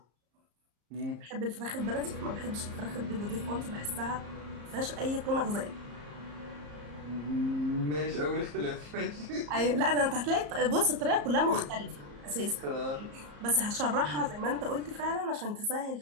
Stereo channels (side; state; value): left; late; 34 ms